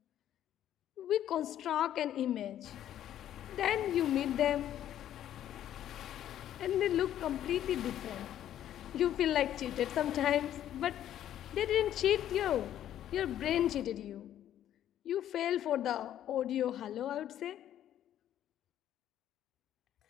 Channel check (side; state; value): right; quieter; 11.4 dB